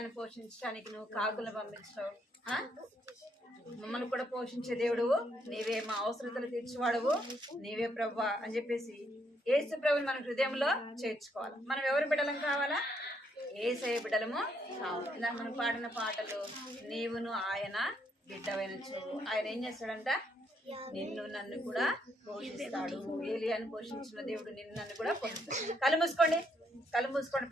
పోషించడానికి నువ్వు కాకులను పంపించావు, మమ్మల్ని కూడా పోషించే దేవుడు నీవే, మా అవసరతలు తీర్చేవాడువు నీవే ప్రభువా అని చెప్పేసి యేసు ప్రభుని మన హృదయంలో చేర్చుకోవాలి. మనం ఎవరి బిడ్డలం కావాలా, యేసయ్య బిడ్డలము కావాలి. ఇలా మనం పాడిన పాటలు, నీవును ఆయన బిడ్డవైన చూడు. ఆయన ఏం చేస్తాడంట, నిన్ను నన్ను కూడా పోషిస్తాడు. ఏలియాను పోషించిన దేవుడు నిన్ను నన్ను కూడా పోషిస్తాడు. కళ్ళు మూసుకోండి,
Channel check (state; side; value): normal; both; correlation 0.73